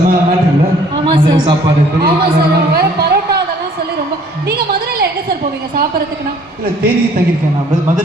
மேட்ரு இல்லை? சாப்பாடு பரோட்டா அதெல்லாம் சொல்லி ரொம்ப. நீங்க மதுரையில எங்க சார் போவீங்க சாப்பிட்றதுக்குன்னா? இல்லை தேனியில் தங்கியிருக்கேன். நான்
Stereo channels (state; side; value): normal; both; correlation 0.57